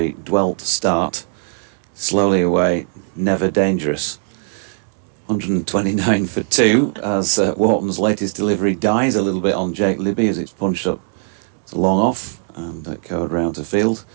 dwell to start, slowly away, never dangerous. 129 for 2 as Wharton's latest delivery dies a little bit on Jake Libby as it's punched up to long off and covered round to field.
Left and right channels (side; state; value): left; silent; 63 dB below the other